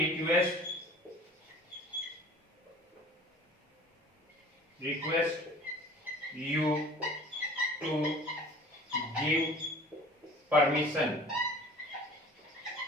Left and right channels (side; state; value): both; normal; correlation 0.46